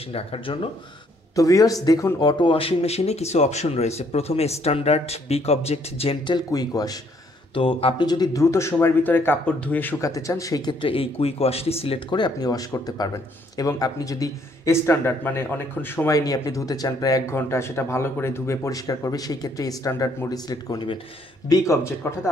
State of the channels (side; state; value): both; normal; correlation 0.67